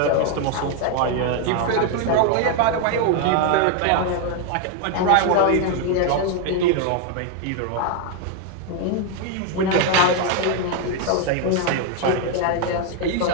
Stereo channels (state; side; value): different; both; correlation 0.01